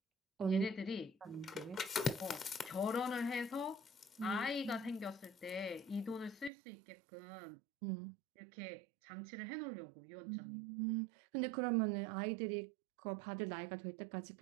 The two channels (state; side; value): drops out; left; at 6.5 s